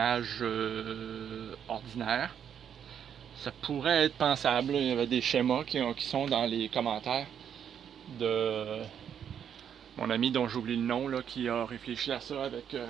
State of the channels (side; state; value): left; quieter; 8.5 dB